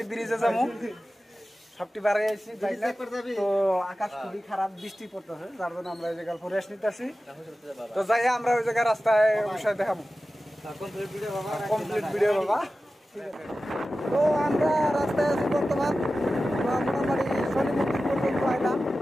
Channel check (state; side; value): normal; both; correlation 0.94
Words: ব্রিজে যাবো। সবটি বাড়ি আইছি বাইরে। তো আকাশ খুবই খারাপ, বৃষ্টি পড়তেছে, যার জন্য আমরা এই জায়গায় রেস্ট নিতেছি। তো যাই আমরা ওই জায়গায় রাস্তায় অবশ্যই দেখাবো কমপ্লিট ভিডিও বাবা। তো আমরা রাস্তায় আছি বর্তমান। মোটামুটি শনি মন্দির পর্যন্ত আইলাম,